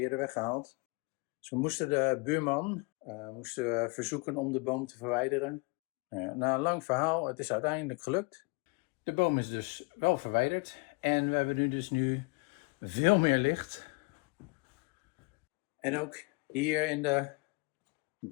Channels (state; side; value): quieter; right; 28.8 dB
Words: weggehaald. Dus we moesten de buurman verzoeken om de boom te verwijderen. Na een lang verhaal, het is uiteindelijk gelukt. De boom is dus wel verwijderd en we hebben nu veel meer licht. En ook hier in de